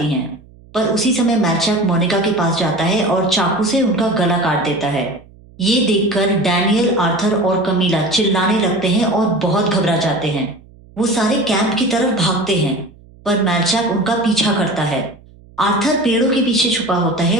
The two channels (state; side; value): noise; right; hum, 25 dB below the sound